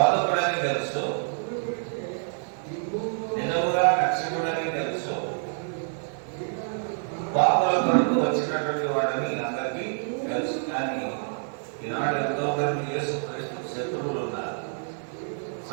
తెలుసు, నిజముగా రక్షకుడని తెలుసు, పాపల కొరకు వచ్చినటువంటి వాడని అందరికీ తెలుసు. కానీ ఈనాడు ఎంతో మంది యేసుక్రీస్తు శత్రువులు ఉన్నారు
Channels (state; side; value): silent; left; digital silence